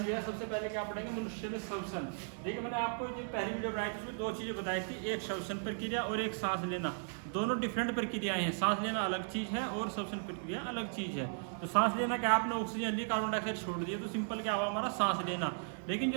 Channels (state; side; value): silent; left; digital silence